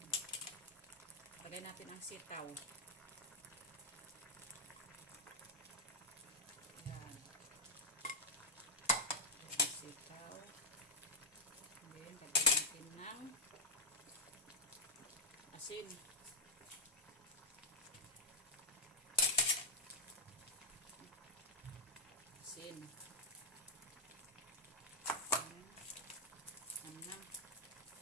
Lagay natin ang sitaw. Yan. Sitaw. Then, lagay natin ng asin. Asin. Anam.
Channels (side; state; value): both; normal; correlation -0.02